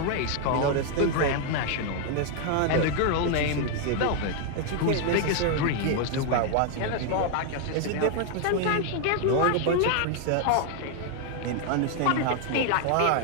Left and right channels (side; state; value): both; different; correlation 0.00